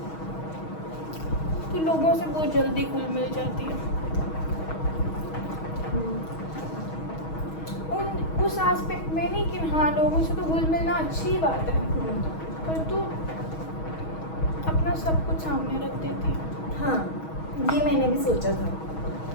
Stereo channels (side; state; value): right; late; 6.3 ms